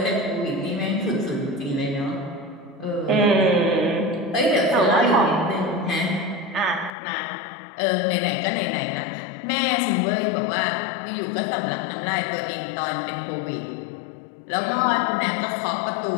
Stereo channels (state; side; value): drops out; right; at 7.0 s